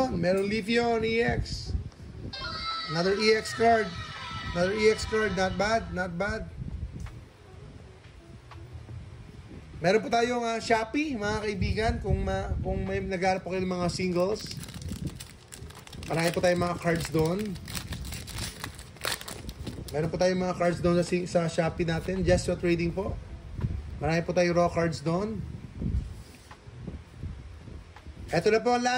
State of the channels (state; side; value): identical; both; correlation 1.00